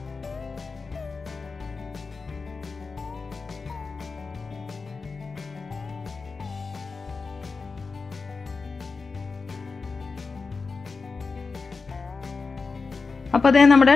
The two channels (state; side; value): quieter; right; 4.5 dB